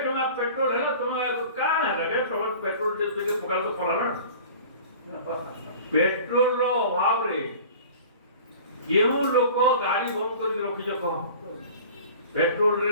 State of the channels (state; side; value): inverted; both; correlation -0.42